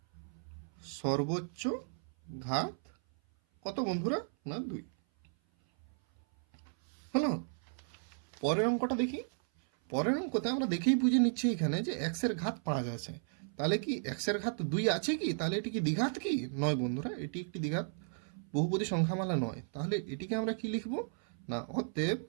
সর্বোচ্চ ঘাত কত বন্ধুরা? না 2। হলো। পরের অঙ্কটা দেখি। পরের অঙ্কতে আমরা দেখেই বুঝে নিচ্ছি এখানে যে এক্সের ঘাত 5 আছে। তাহলে কি এক্সের ঘাত 2 আছে কি? তাহলে এটি কি দ্বিঘাত কি? নয় বন্ধুরা, এটি একটি দ্বিঘাত বহুপদী সংখ্যামালা নয়। তাহলে এটিকে আমরা কি লিখব না, অতএব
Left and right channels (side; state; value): left; silent; 55 dB below the other